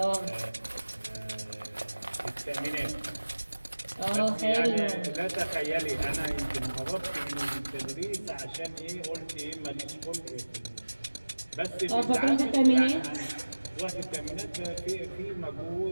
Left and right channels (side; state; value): both; inverted; correlation -1.00